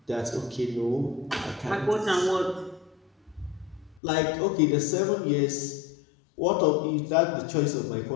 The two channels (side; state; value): right; drops out; at 4.0 s